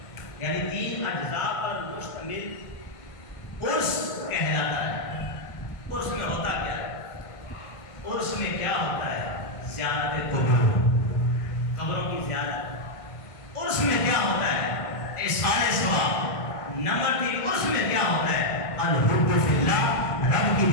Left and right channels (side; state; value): right; late; 1.5 ms